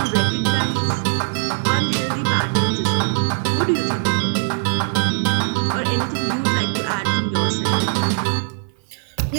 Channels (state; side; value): silent; left; digital silence